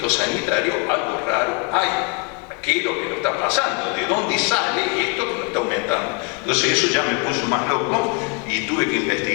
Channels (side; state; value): right; quieter; 34.7 dB